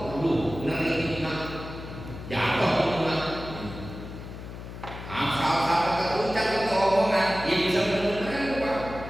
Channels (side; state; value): left; noise; hum, 11 dB below the sound